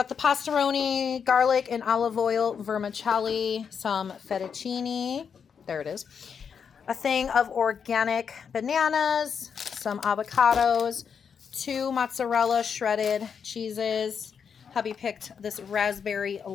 the pastaroni, garlic, and olive oil vermicelli, some fettuccine. There it is. A thing of organic bananas, some avocados, 2 mozzarella shredded cheeses. Hubby picked this raspberry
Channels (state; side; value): quieter; right; 6.8 dB